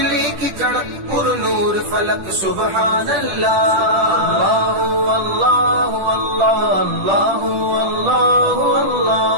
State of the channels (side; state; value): left; late; 10 ms